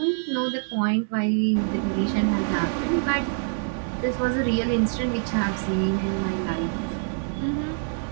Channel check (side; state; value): left; silent; digital silence